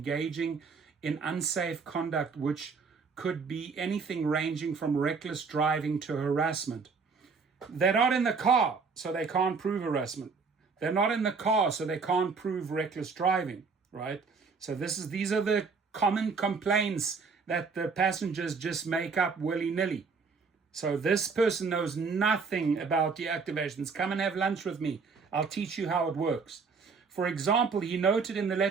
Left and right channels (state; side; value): quieter; left; 5.0 dB